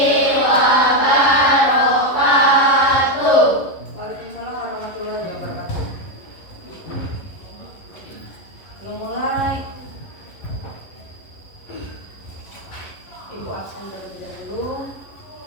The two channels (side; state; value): right; late; 11 ms